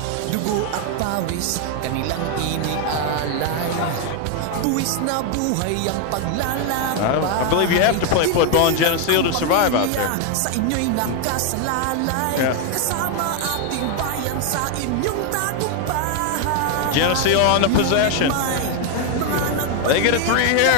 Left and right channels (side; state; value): both; different; correlation 0.01